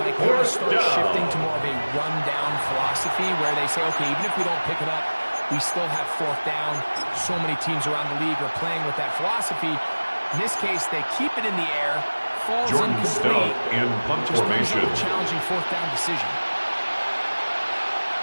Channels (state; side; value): inverted; both; correlation -1.00